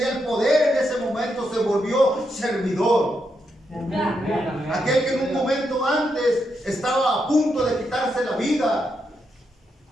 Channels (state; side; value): normal; both; correlation 0.82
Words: el poder en ese momento, se volvió servidor. Aquel que en un momento antes estaba a punto de quitarse la vida,